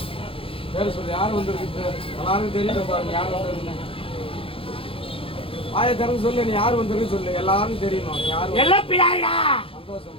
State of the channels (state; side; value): late; right; 0.27 ms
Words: பேர் சொல்லு, யார் வந்துருக்கு? எல்லாருக்கும் தெரியல பாருங்க, யார் வந்துருக்குன்னு. ஆய திறந்து சொல்லு, நீ யார் வந்துருக்கு சொல்லு, எல்லாரும் தெரியணும். யார்?